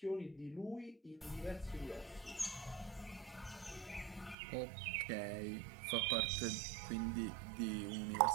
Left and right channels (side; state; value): left; drops out; at 4.4 s